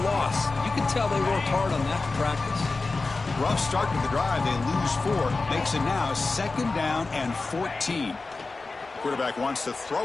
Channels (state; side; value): quieter; right; 3.7 dB